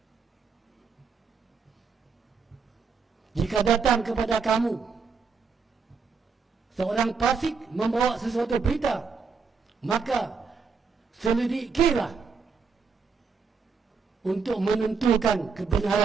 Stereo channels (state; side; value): quieter; left; 5.3 dB